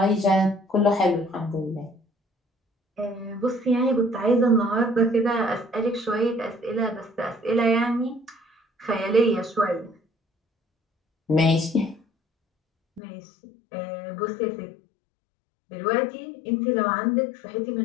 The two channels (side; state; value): right; drops out; at 13.0 s